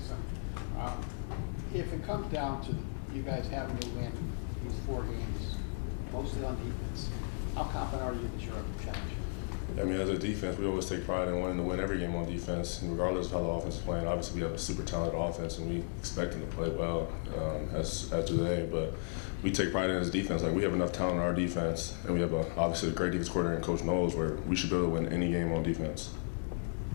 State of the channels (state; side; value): silent; right; 55 dB below the other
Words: If it comes down to you guys having to win these 4 games, mostly on defense, how confident are you that you're up to challenge? I mean, as a defense, we always take pride in wanting to win every game on defense, and regardless of how the offense is playing. Obviously, we have a super talented offense, and we expect them to play well, as do they. But we take pride in as defense. Like, we have enough talent in our defense, and we have obviously a great defense coordinator, and Coach knows where we should be able to win any game on defense.